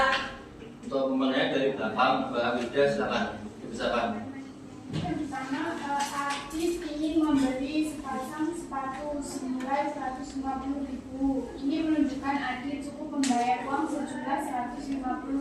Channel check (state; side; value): identical; both; correlation 1.00